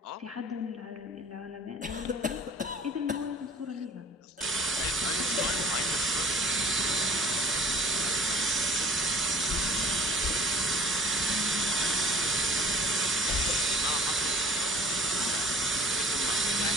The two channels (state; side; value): normal; both; correlation 0.48